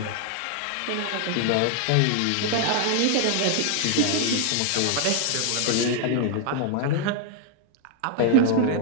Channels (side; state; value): both; different; correlation 0.00